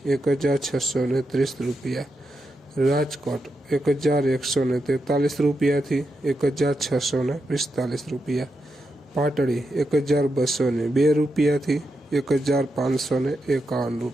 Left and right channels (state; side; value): normal; both; correlation 0.85